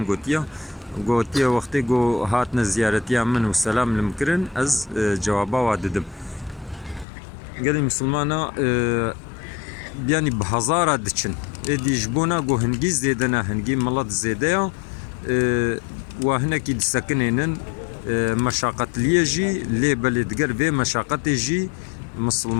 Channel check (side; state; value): right; drops out; at 7.1 s